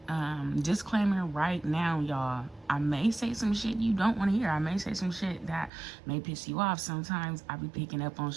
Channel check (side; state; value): left; drops out; at 5.7 s